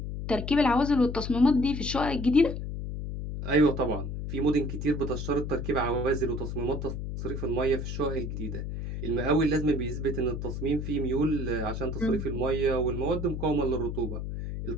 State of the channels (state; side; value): noise; left; hum, 5 dB below the sound